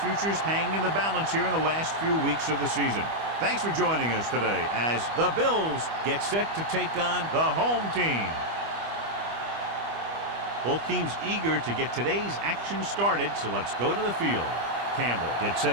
hang in the balance here in the last few weeks of the season. Thanks for joining us today as the Bills get set to take on the home team. Both teams eager to get today's action started, so let's go to the field. Campbell gets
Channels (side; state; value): left; late; 25 ms